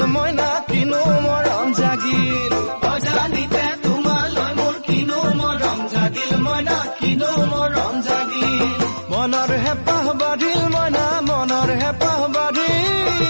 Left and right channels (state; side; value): inverted; both; correlation -1.00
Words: মইনা কিনো মৰম জাগিল অজানিতে তোমালৈ মোৰ কিনো মৰম জাগিল মইনা কিনো মৰম জাগিল মনৰ হেঁপাহ বাঢ়িল মইনা মনৰ হেঁপাহ বাঢ়িল